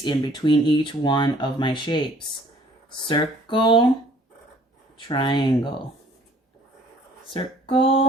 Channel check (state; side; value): normal; both; correlation 0.56